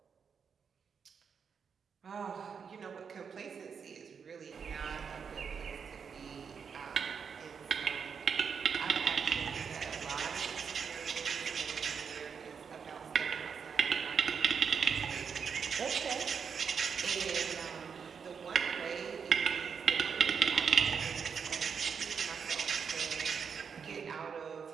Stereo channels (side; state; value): left; quieter; 6.4 dB